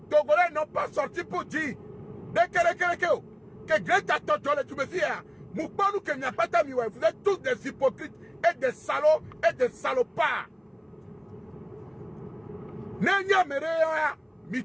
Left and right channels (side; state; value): both; identical; correlation 1.00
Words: togolais n'ont pas sorti pour dire que Greta Thunberg, tu me dis, vous êtes tous des hypocrites et des salauds et des salopards. Nenya mereya